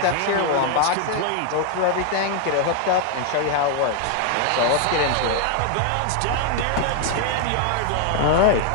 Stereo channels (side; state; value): both; different; correlation 0.00